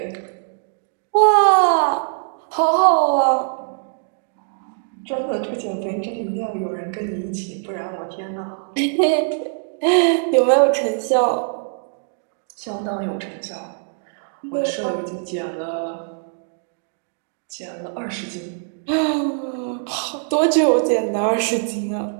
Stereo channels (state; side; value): silent; left; digital silence